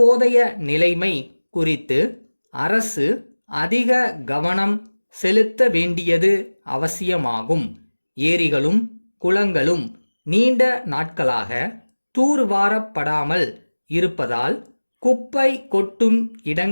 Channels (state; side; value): inverted; both; correlation -1.00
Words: நிலைமை குறித்து அரசு அதிக கவனம் செலுத்த வேண்டியது அவசியமாகும். ஏரிகளும் குளங்களும் நீண்ட நாட்களாக தூர்வாரப்படாமல் இருப்பதால் குப்பை கொட்டும்